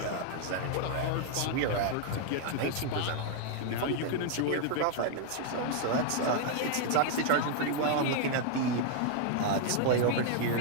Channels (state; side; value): different; both; correlation 0.00